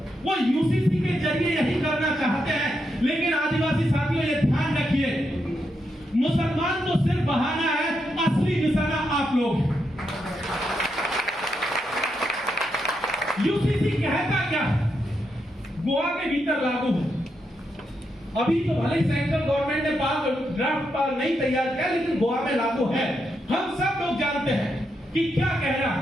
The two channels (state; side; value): normal; both; correlation 0.82